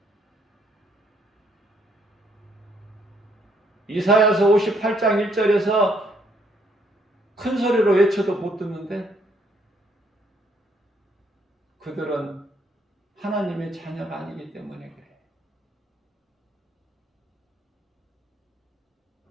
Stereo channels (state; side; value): normal; both; correlation 0.69